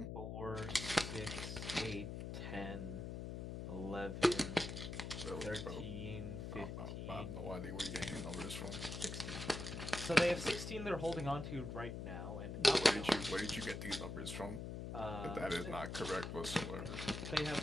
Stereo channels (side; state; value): left; noise; hum, 5 dB below the sound